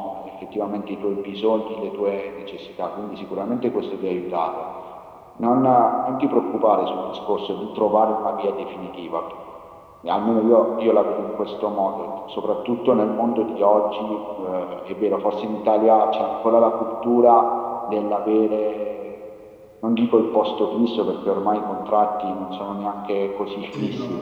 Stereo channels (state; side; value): identical; both; correlation 1.00